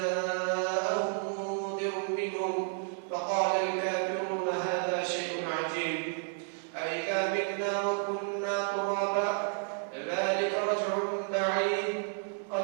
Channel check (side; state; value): left; silent; 57 dB below the other